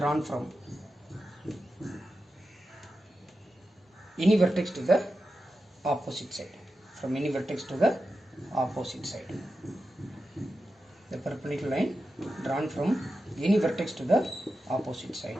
from any vertex to the opposite side. From any vertex to the opposite side. The perpendicular line drawn from any vertex to the opposite side.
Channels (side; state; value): both; normal; correlation 0.91